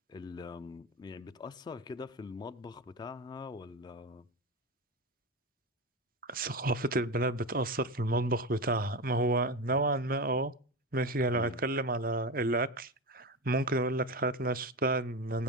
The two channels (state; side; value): normal; both; correlation 0.20